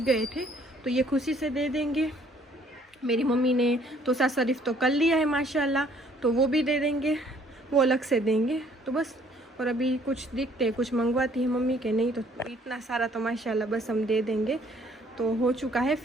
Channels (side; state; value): both; normal; correlation 0.61